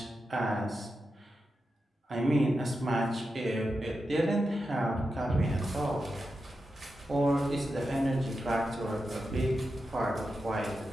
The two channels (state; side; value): normal; both; correlation 0.89